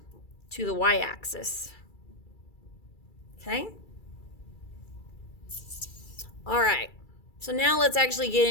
to the y-axis. Okay? All right. So now let's actually get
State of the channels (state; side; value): late; right; 2.3 ms